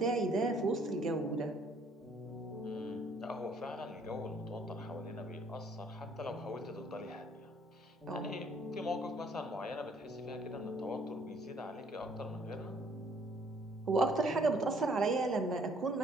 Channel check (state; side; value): normal; both; correlation 0.62